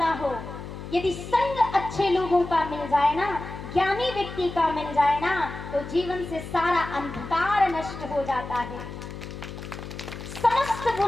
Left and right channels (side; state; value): left; noise; hum, 10 dB below the sound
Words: हो, यदि संग अच्छे लोगों का मिल जाए ना, ज्ञानी व्यक्ति का मिल जाए ना, तो जीवन से सारा अंधकार नष्ट हो जाता है, समस्त